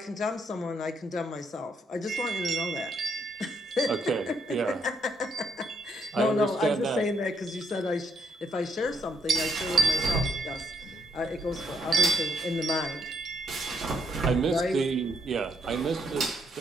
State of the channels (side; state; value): both; normal; correlation 0.74